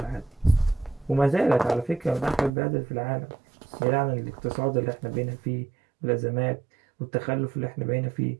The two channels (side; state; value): left; drops out; at 2.5 s